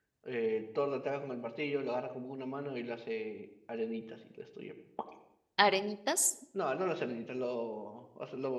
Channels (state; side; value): identical; both; correlation 1.00